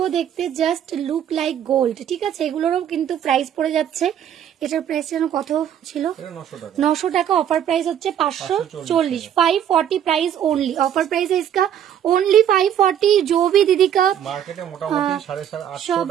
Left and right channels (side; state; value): left; quieter; 9.8 dB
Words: দেখতে, জাস্ট লুক লাইক গোল্ড, ঠিক আছে। এগুলোরও কিন্তু প্রাইস পড়ে যাচ্ছে। এটার প্রাইস যেন কত ছিল, 900 টাকা। অফার প্রাইস হচ্ছে 540, 540 प्राइस ओनली। ऑफर प्राइस है इसका ओनली 540। जो भी दीदी का মার্কেটে মোটামুটি 850 টাকা